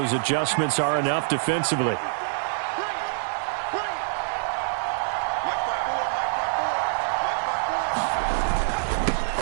adjustments are enough defensively.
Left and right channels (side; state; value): left; silent; digital silence